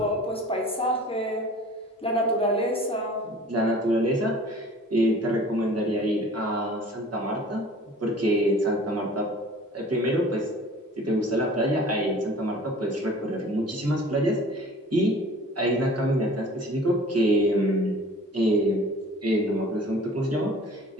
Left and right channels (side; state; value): both; normal; correlation 0.46